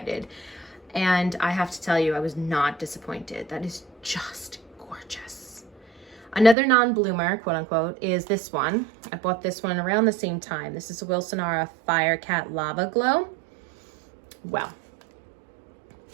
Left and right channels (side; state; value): left; drops out; at 6.6 s